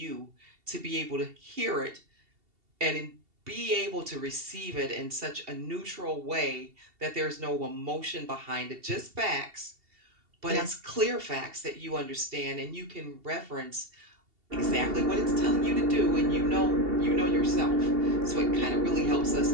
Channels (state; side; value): late; left; 2.7 ms